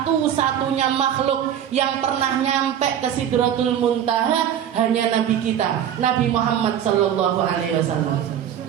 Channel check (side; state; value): left; quieter; 9.8 dB